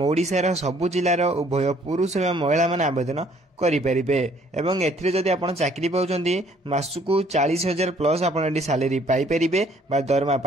ओडिशार सबु जिलार उभय पुरुष एवं महिला माने आवेदन करें एवं एथिरे जदि आपण चाकरी पाउछंती मासकु 40,000 प्लस आपण सैलरी पाई परिबे बा दरमा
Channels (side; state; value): both; normal; correlation 0.61